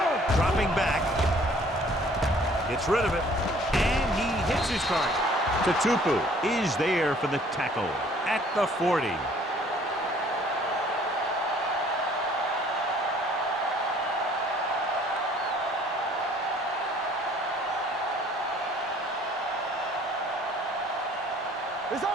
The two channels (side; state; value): both; normal; correlation 0.56